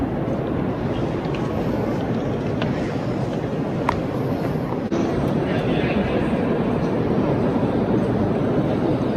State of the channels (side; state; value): both; identical; correlation 1.00